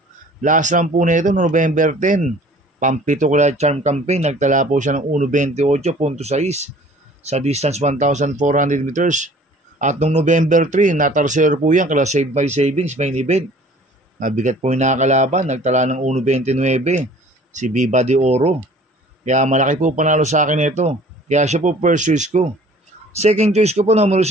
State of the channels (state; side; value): normal; both; correlation 0.50